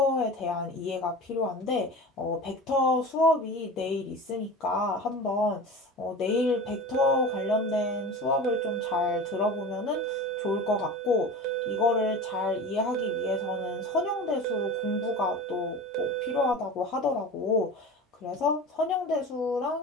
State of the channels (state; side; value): normal; both; correlation 0.33